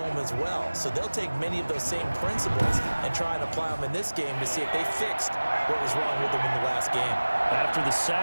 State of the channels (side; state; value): both; inverted; correlation -1.00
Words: as well. So they'll take many of those same principles and try and apply them in this game to see if they fixed what was wrong with them in the last game. After the